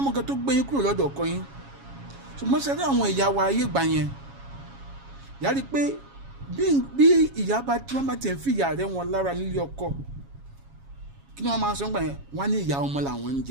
kan tó gbé yín kúrò lọ́dọ̀ ọkọ yín ṣùgbọ́n sẹ́dá àwọn ìyá wa ayé gbà yẹn yàrá pé bí ìyá bá tí wọ́n bá tẹ̀ ń fi ìyá rẹ̀ wọn lára nílé ọkọ kí ni wọ́n máa sọ gbà yẹn wọ́n á ní ìyá ọmọ làwọn ń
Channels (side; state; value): left; late; 7.3 ms